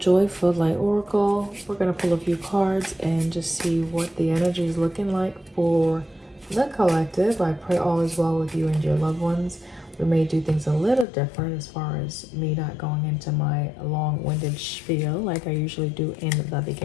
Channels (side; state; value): right; drops out; at 11.1 s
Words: Joyful Light Oracle. We're going to pull a few cards and just see what the energy is looking like for the collective. I pray all is well with you and your loved ones. We may do things a little different as far as me not going into my long-winded spiel like I usually do in the